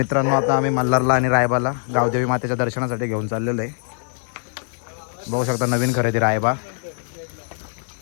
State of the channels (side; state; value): right; silent; digital silence